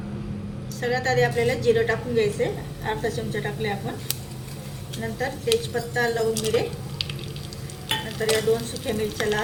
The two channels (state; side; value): identical; both; correlation 1.00